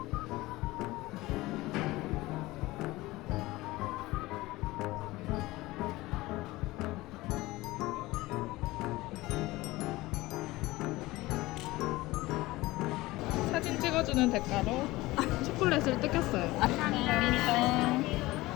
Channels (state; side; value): quieter; right; 19.3 dB